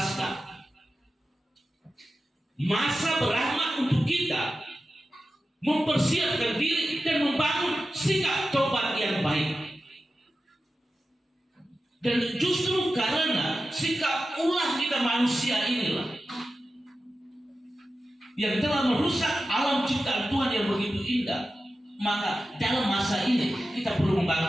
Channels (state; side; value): normal; both; correlation 0.93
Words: Masa berahmat untuk kita mempersiapkan diri dan membangun sikap tobat yang baik. Dan justru karena sikap ulah kita manusia inilah yang telah merusak alam ciptaan Tuhan yang begitu indah. Maka dalam masa ini kita perlu membangun